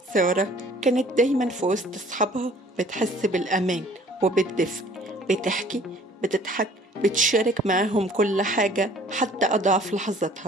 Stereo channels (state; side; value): normal; both; correlation 0.54